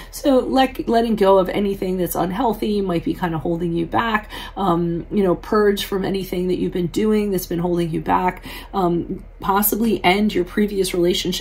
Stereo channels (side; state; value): both; identical; correlation 1.00